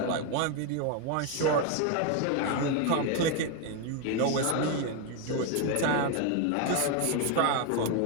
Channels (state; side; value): different; both; correlation 0.01